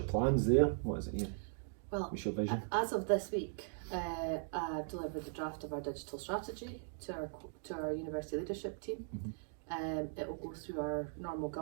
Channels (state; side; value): silent; left; digital silence